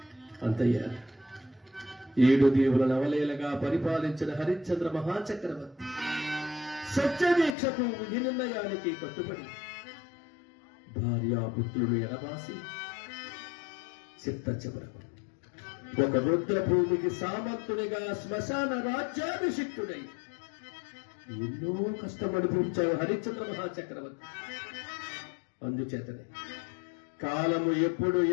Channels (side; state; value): right; drops out; at 7.6 s